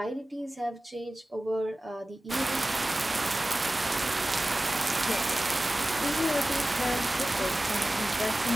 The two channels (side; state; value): both; normal; correlation 0.96